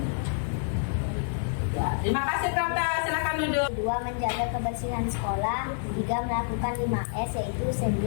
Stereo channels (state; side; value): silent; right; digital silence